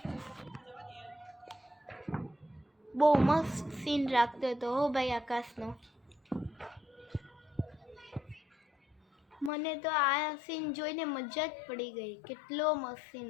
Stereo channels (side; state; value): right; drops out; at 9.5 s